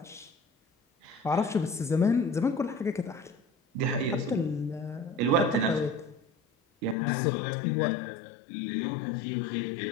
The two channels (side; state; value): right; drops out; at 7.0 s